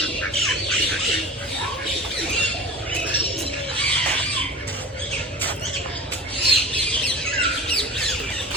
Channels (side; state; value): both; normal; correlation 0.37